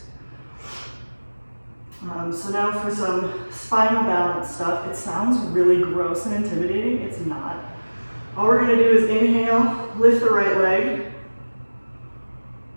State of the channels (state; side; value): inverted; both; correlation -1.00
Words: So now for some spinal balance stuff. It sounds really gross and intimidating. It's not. All we're going to do is inhale, lift the right leg.